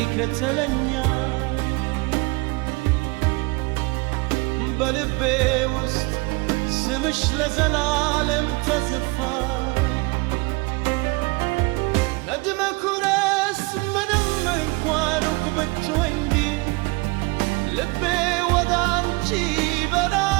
በልቤ ውስጥ ስምሽ ለዘላለም ተጽፏል። ነድመ ኩረስ ምንም እንኳን ሩቅ ብትሆኝ ልቤ ወደ አንቺ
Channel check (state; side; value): quieter; left; 26.0 dB